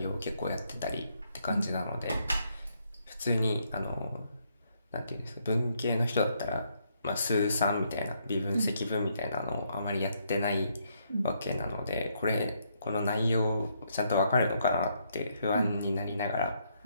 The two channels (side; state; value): both; inverted; correlation -0.74